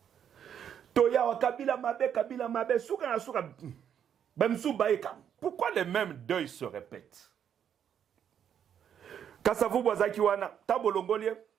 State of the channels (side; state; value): left; quieter; 8.8 dB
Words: toya wa kabila mabe suka na suka bamsu baeka pourquoi les mêmes deuils se répètent Kasavubu azaki wana tabolongolie